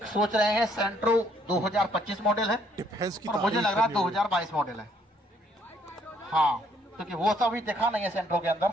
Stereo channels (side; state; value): both; normal; correlation 0.66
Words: सोच रहे हैं सेंट्रो 2025 मॉडल है डिफेंस की और मुझे तारीफ लग रहा है करनी होगी। 2022 मॉडल है। हाँ, क्योंकि वो सब भी देखा नहीं है सेंट्रो के अंदर।